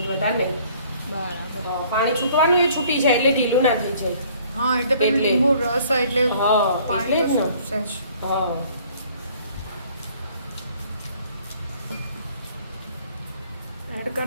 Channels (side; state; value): both; inverted; correlation -0.57